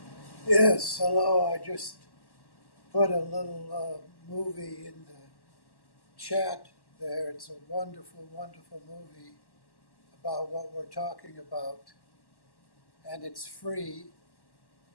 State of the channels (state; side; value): late; right; 1.1 ms